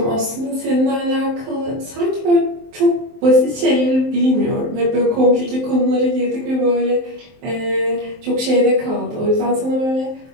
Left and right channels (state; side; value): late; left; 23 ms